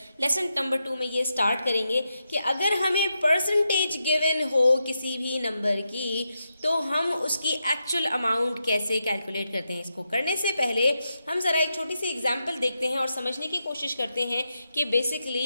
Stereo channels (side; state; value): both; inverted; correlation -0.86